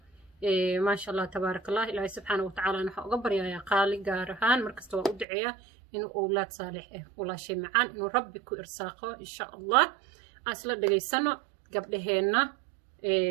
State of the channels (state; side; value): drops out; left; at 5.2 s